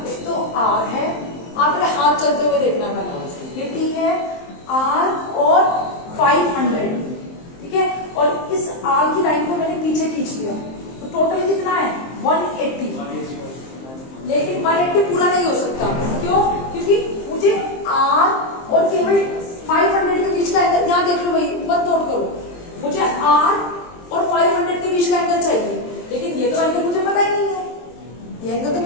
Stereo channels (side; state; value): right; late; 23 ms